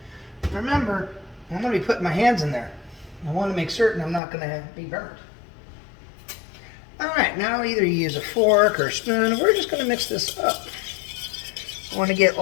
Remember, I'm going to be putting my hands in there. I want to make certain I'm not going to be burnt. Alright, now either you use a fork or a spoon, or we're just going to mix this up. I want to get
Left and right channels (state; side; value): drops out; right; at 4.2 s